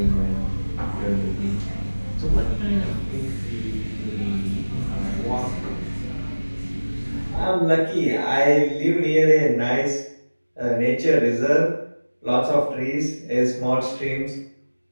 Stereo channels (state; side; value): inverted; both; correlation -1.00